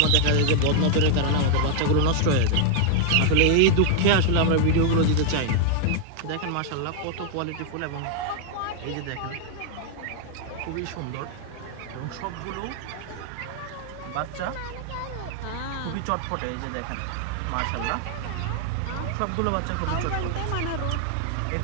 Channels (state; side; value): different; both; correlation 0.00